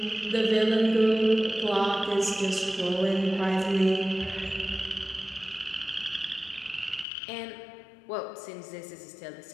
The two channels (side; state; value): right; drops out; at 7.1 s